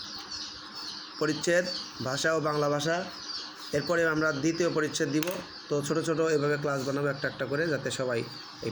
পরিচ্ছেদ ভাষা ও বাংলা ভাষা। এরপরে আমরা দ্বিতীয় পরিচ্ছেদ দিব। তো ছোট ছোট এভাবে ক্লাস বানাবো একটা একটা করে, যাতে সবাই এই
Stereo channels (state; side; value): identical; both; correlation 1.00